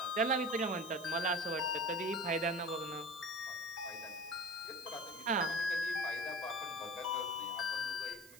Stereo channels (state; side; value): noise; right; hiss, 19 dB below the sound